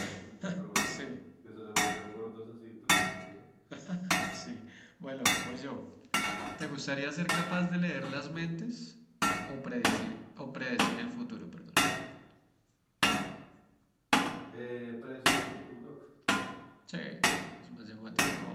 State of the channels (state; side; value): identical; both; correlation 1.00